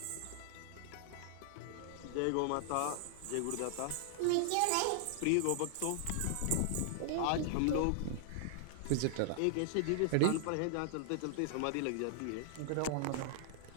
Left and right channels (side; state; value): both; different; correlation -0.01